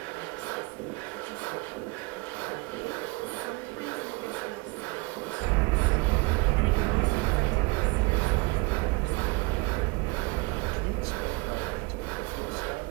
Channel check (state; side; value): quieter; left; 25.8 dB